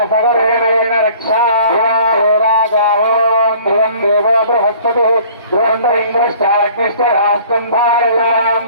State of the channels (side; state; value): both; inverted; correlation -0.51